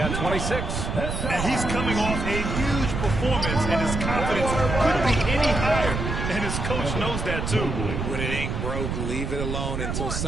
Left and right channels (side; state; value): right; noise; rumble, 3 dB below the sound